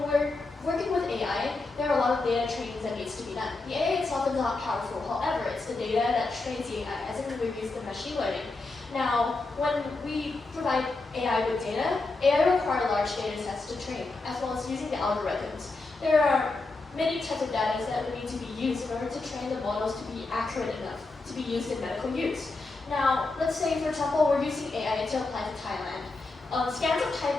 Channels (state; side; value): quieter; right; 3.5 dB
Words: we're working with AI, there are a lot of data trainings that needs to be done. The AI itself is not powerful, however, it's the data that trains the AI, as in we use the machine learning. Now, when we provide AI with data, AI requires large data sets to train, as well as using the algorithms. There are many types of data that would need to be used in order to train the models to be accurate enough to be used in medical use. Now, let's say, for example, we're using AI to apply to Thailand. Scans of Thai